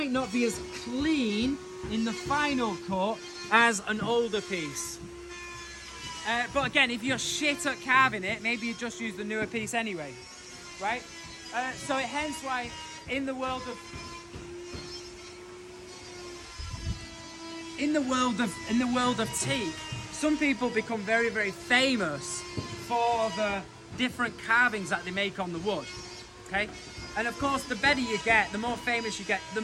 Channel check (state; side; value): identical; both; correlation 1.00